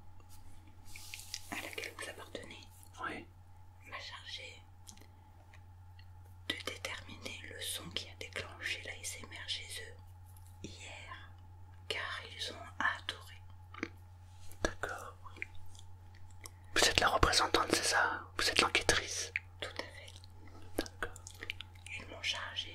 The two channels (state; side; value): identical; both; correlation 1.00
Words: à laquelle vous appartenez Oui. m'a chargé de déterminer le son qui a déclenché l'ASMR chez eux hier, car ils ont adoré. D'accord. Vous êtes la représentante, c'est ça? Vous êtes l'enquêtrice? Tout à fait. D'accord. Ils m'ont